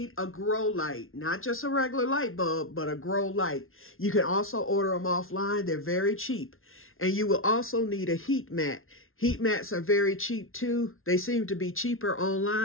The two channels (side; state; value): right; late; 0.61 ms